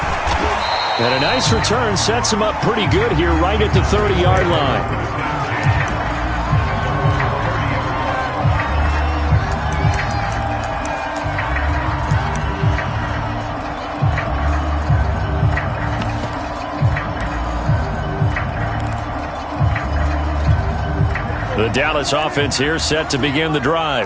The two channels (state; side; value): identical; both; correlation 1.00